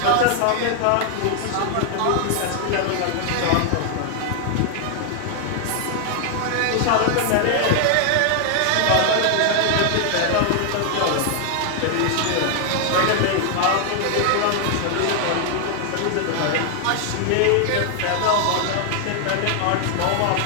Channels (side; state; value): both; different; correlation 0.00